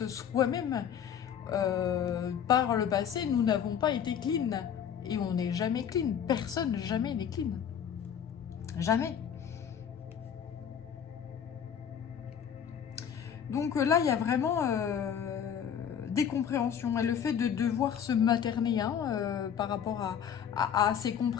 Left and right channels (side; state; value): right; quieter; 8.4 dB